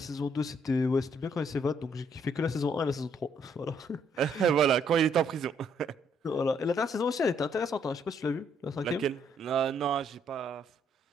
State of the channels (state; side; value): normal; both; correlation 0.70